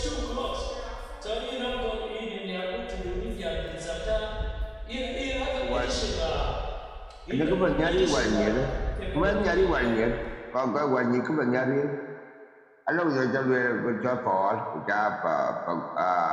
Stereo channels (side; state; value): both; identical; correlation 1.00